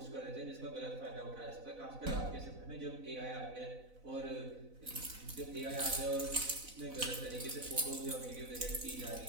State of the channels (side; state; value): left; late; 4.0 ms